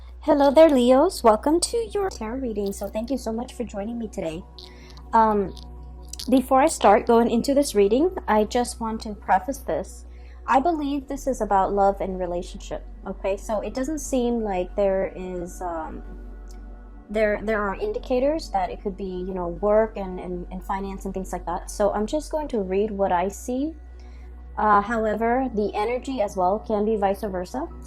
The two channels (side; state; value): both; identical; correlation 1.00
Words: Hello there, Leos. Welcome to your tarot reading. So thank you so much for joining me today. Um, Before I start going into this reading, I just want to preface this. I believe this is about love and relationship. Okay, so it doesn't seem like there is there are indicators that it could be, work and finance and things like that. So I'm just going to read what I see. However, the energy as well can be vice versa.